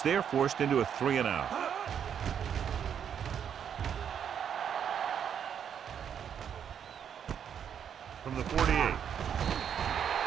there, forced into a 3-and-out.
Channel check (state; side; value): quieter; left; 8.3 dB